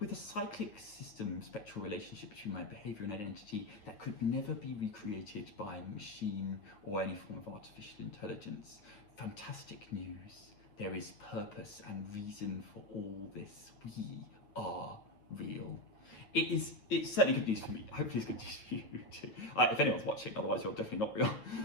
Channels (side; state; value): right; late; 9.4 ms